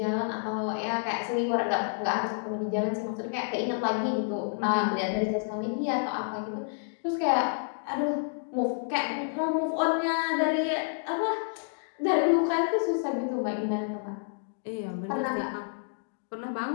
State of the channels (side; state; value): right; silent; digital silence